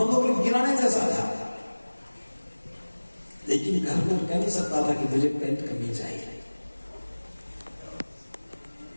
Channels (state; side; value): inverted; both; correlation -1.00